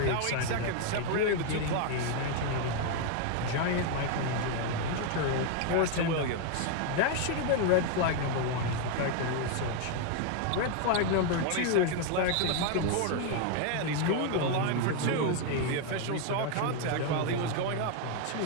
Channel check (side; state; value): both; different; correlation 0.01